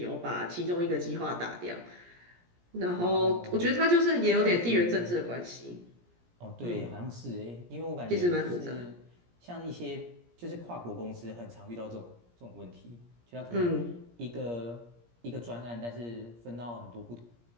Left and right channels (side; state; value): left; late; 17 ms